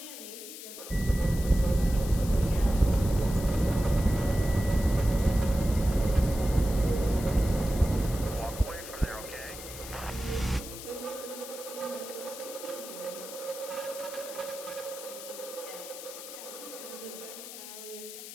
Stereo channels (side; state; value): left; noise; hiss, 12 dB below the sound